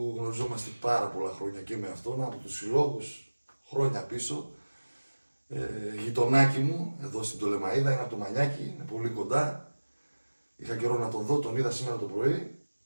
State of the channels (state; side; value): inverted; both; correlation -1.00